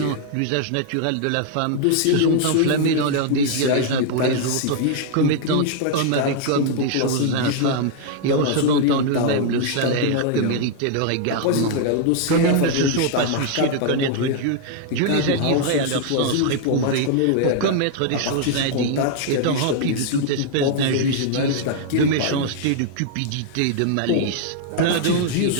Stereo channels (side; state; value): both; different; correlation 0.00